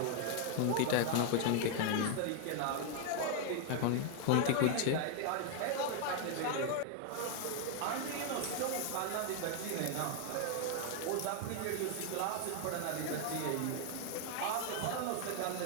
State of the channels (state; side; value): different; both; correlation 0.00